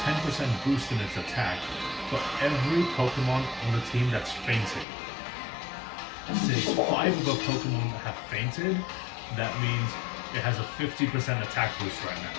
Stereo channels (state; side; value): drops out; right; at 4.9 s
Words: 10% boost in its attack for every Pokemon on the team that's fainted. Since 5 of the Pokemon have fainted, that means it has a 50% attack boost right now.